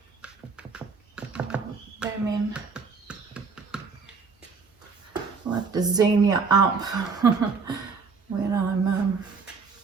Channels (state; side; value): quieter; left; 5.0 dB